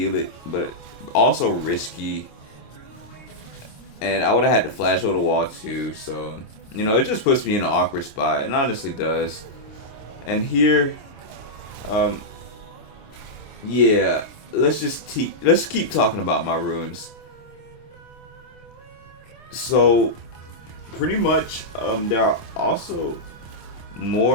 it, but also risky. And I would have had to flash over the wall too, so you know, it just puts me in an awkward spot. It honestly does. And here, yeah, let's keep talking about my runes. So pretty much, there are also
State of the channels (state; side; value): late; right; 26 ms